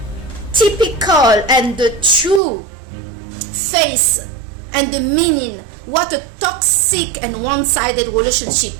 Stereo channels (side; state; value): left; drops out; at 2.4 s